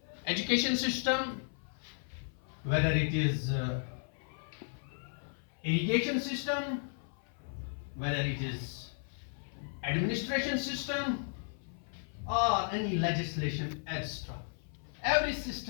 education system, whether it is irrigation system, whether it is administration system or any legislation extra, every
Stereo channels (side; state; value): right; silent; 55 dB below the other